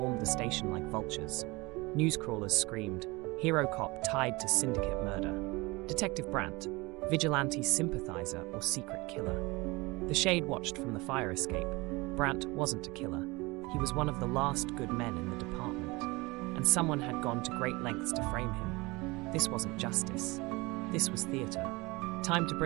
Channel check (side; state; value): left; quieter; 23.8 dB